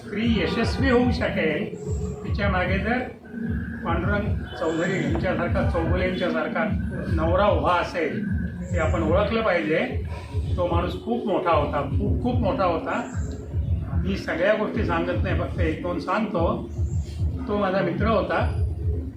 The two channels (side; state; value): both; identical; correlation 1.00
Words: यशस्वी होऊ शकेल तिच्या मागे जर पांडुरंग चौधरी यांच्यासारखा, चौगुलेंच्यासारखा नवरा उभा असेल हे आपण ओळखलं पाहिजे. तो माणूस खूप मोठा होता, खूप खूप मोठा होता. मी सगळ्या गोष्टी सांगत नाही, फक्त 1-2 सांगतो. तो माझा मित्र होता.